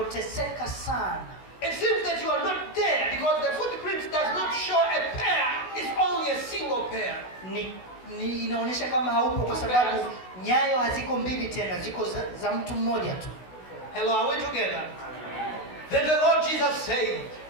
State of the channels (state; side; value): late; right; 16 ms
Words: sana, it seems that you are not there because the footprints does not show a pair, it's only a single pair. ni inaonyesha kama haupo kwa sababu nyayo haziko mbili tena, ziko za mtu mmoja tu. Hello, are we together? Then the Lord Jesus said,